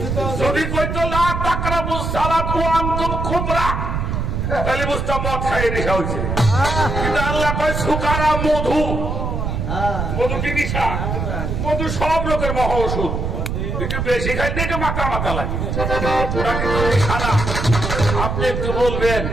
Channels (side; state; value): right; noise; rumble, 2 dB below the sound